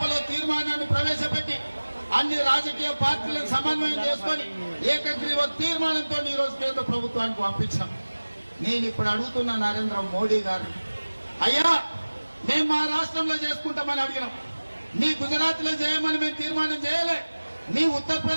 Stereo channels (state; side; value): inverted; both; correlation -1.00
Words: తీర్మానాన్ని ప్రవేశపెట్టి అన్ని రాజకీయ పార్టీలను సమన్వయం చేసుకొని ఏకగ్రీవ తీర్మానంతో ఈ రోజు కేంద్ర ప్రభుత్వానికి పంపించాం. నేను ఇప్పుడు అడుగుతున్న నరేంద్ర మోడీ గారు, అయ్యా మేము మా రాష్ట్రంలో చేసుకుంటామని అడిగినాం, మీ గుజరాత్ లో చేయమని మేము తీర్మానం చేయలే, మీ